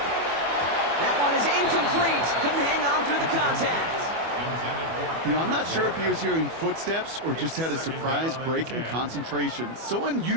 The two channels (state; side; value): late; left; 25 ms